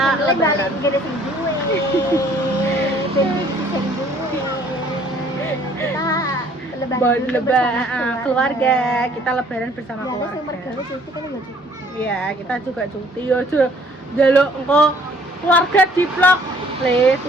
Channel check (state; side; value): normal; both; correlation 0.59